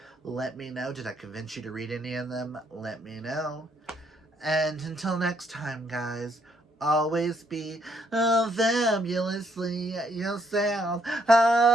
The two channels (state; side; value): normal; both; correlation 0.71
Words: Let me know. Did I convince you to read any of them? Let me know. And until next time, guys, always be fabulously yourself.